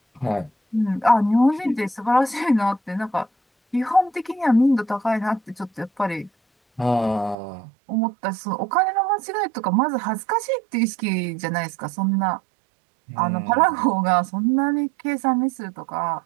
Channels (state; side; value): drops out; left; at 7.4 s